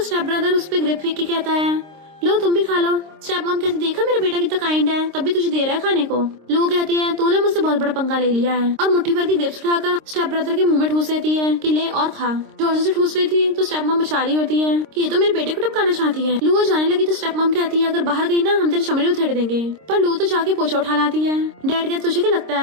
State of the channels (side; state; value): left; late; 26 ms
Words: ब्रदर उस पे ग्रेप फेंक के कहता है लो तुम भी खा लो। स्टेप मॉम कहती देखा मेरा बेटा कितना काइंड है, तब भी तुझे दे रहा है खाने को। लो कहती है तूने मुझसे बहुत बड़ा पंगा ले लिया है, और मुट्ठी भर की ग्रेप्स उठाकर स्टेप ब्रदर के मुंह में ठूस देती है कि ले और खा। जोर से ठूस रही थी तो स्टेप मॉम बचा रही होती है कि ये तो मेरे बेटे को टपकाना चाहती है। लू जाने लगी तो स्टेप मॉम कहती है अगर बाहर गई ना हम तेरी चमड़ी उधेड़ देंगे। पर लू तो जाके पोछा उठा लाती है। डैड कहते तुझे क्या लगता